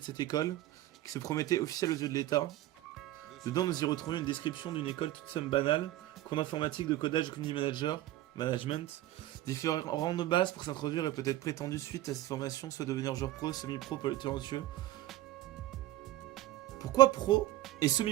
cette école, qui se promettait officiel aux yeux de l'État. Dedans, nous y retrouvions une description d'une école toute somme banale, cours d'informatique, de codage, community management, différentes bases pour s'introduire et peut-être prétendu suite à cette formation, soit devenir joueur pro, semi-pro, pour les talentueux. Pourquoi pro et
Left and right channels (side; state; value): left; quieter; 15.0 dB